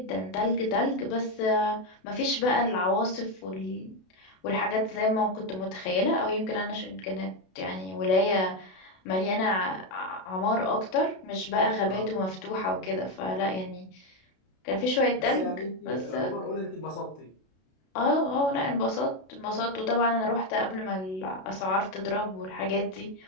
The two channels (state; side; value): late; right; 32 ms